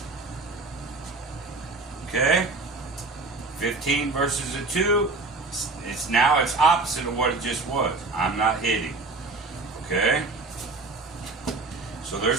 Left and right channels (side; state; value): left; quieter; 3.5 dB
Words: Okay. 15 versus a 2. It's opposite of what it just was. I'm not hitting. Okay. So